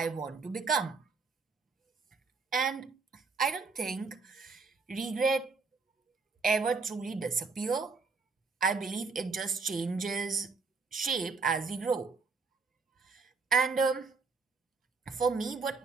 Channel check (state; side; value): quieter; left; 4.4 dB